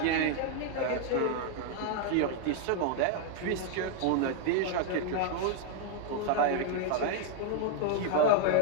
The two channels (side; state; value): both; different; correlation 0.00